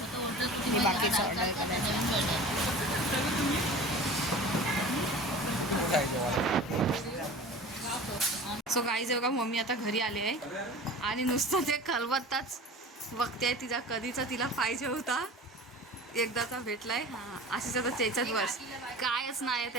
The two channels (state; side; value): normal; both; correlation 0.38